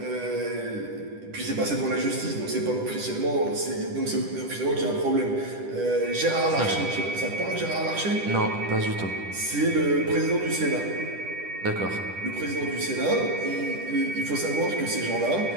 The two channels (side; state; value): left; late; 10 ms